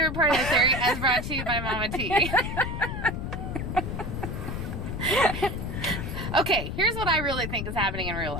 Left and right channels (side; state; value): left; noise; rumble, 4 dB below the sound